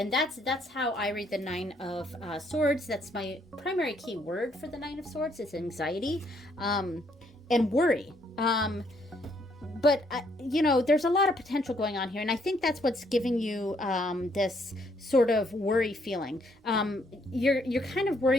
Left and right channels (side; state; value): both; normal; correlation 0.70